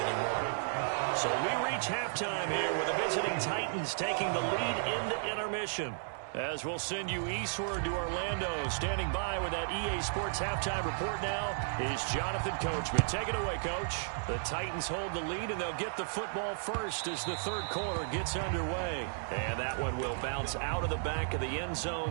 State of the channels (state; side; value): silent; left; digital silence